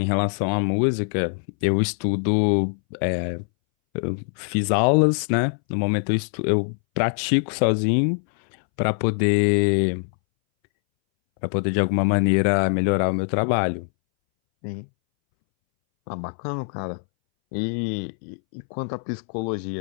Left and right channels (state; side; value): silent; right; 62 dB below the other